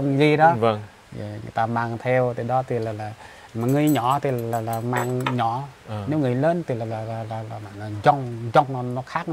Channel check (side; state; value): both; identical; correlation 1.00